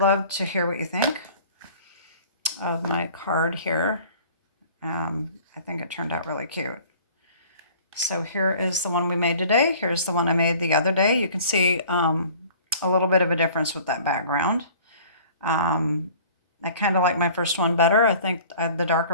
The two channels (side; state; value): both; inverted; correlation -0.48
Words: love to hear what you think of my card here. I think it turned out really cute. So here is the one we made today. Here's the one I made the other day. You can see a little bit of a difference with that background. I kind of like my first one better. I think the